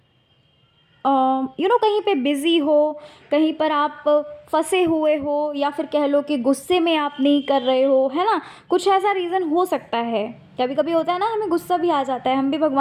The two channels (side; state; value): both; identical; correlation 1.00